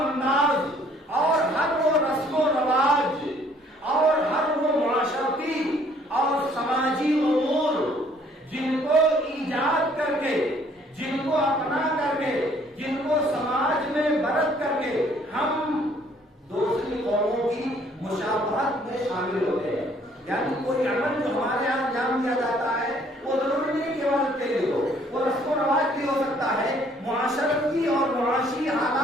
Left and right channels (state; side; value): normal; both; correlation 0.61